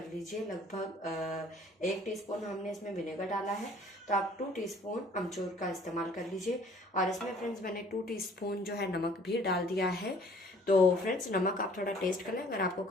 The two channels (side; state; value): both; normal; correlation 0.55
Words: लीजिए। लगभग 1 टीस्पून हमने इसमें विनेगर डाला है, तो आप 2 टीस्पून अमचूर का इस्तेमाल कर लीजिए। और इसमें फ्रेंड्स मैंने 2 टीस्पून जो है नमक भी डाल दिया है। तो फ्रेंड्स नमक आप थोड़ा टेस्ट कर लें, अगर आपको